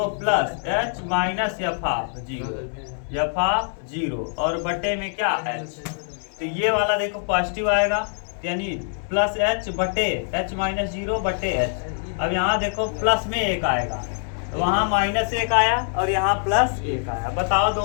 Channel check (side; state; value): right; silent; 63 dB below the other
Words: plus h minus F of 0 और बटे में क्या h। तो ये वाला देखो पॉजिटिव आएगा, यानी प्लस h बटे h माइनस 0 बटे h। अब यहाँ देखो प्लस में 1 आएगा, तो वहाँ माइनस 1 आया और यहाँ प्लस 1 आया। बताओ